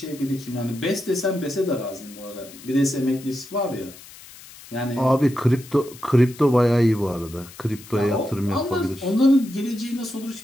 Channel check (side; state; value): left; noise; hiss, 19 dB below the sound